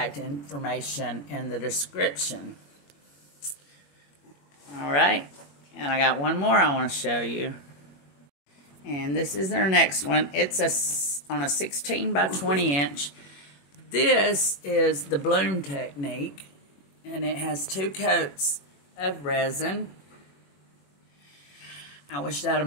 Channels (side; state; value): right; late; 21 ms